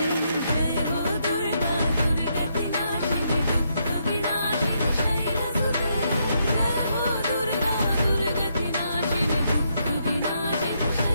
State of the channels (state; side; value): inverted; both; correlation -0.77